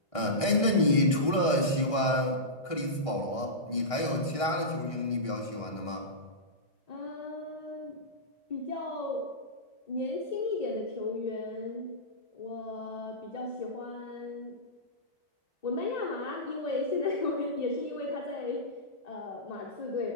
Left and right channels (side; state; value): right; late; 1.6 ms